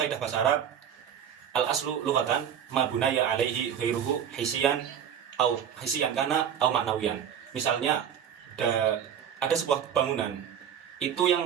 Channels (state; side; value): quieter; left; 8.8 dB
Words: bahasa Arab, al-aslu lughatan ma bunaya alaihi ghairuhu hisiyan kana au maknawiyan. Misalnya ada sebuah bangunan, itu